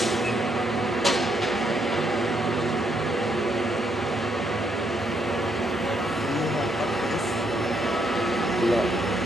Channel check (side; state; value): both; normal; correlation 0.74